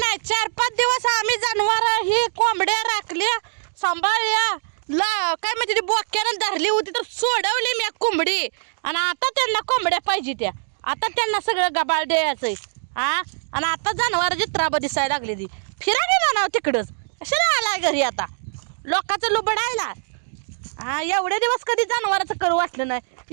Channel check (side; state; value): left; silent; digital silence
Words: 4-5 दिवस आम्ही जनावर ही कोंबड्या राखल्या सांभाळल्या काय म्हणजे ती बोक्यानं धरली होती तर सोडवली मी कोंबडी आणि आता त्यांना कोंबड्या पाहिजे त्या आता त्यांना सगळं गबाळ द्यायचंय हा आणि आता जनावरांची त्राब दिसायला लागली ती फिरा गेला ना तिकडंच कशाला आलाय घरी आता लोकांचं लुबडायला हा एवढे दिवस कधी जनावराचं करू वाटलं